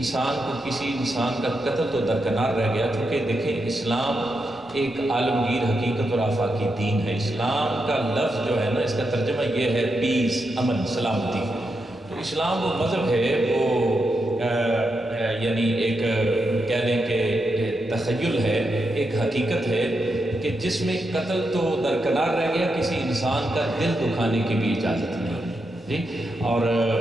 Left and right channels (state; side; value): normal; both; correlation 0.85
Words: کو کسی انسان کا قتل تو درکنار رہ گیا، چونکہ دیکھیں اسلام ایک عالمگیر حقیقت اور آفاقی دین ہے۔ اسلام کا لفظ جو ہے نا، اس کا ترجمہ یہ ہے پیس، امن، سلامتی۔ تو اسلام وہ مذہب ہے، وہ یعنی ایک کہہ دیں کہ تخیل ہے، ایک حقیقت ہے کہ جس میں قتل تو درکنار رہ گیا، کسی انسان کا دل دکھانے کی بھی اجازت نہیں جی۔ اور